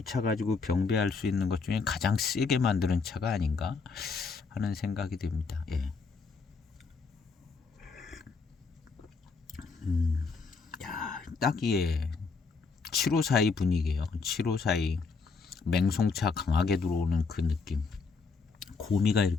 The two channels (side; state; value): right; quieter; 4.6 dB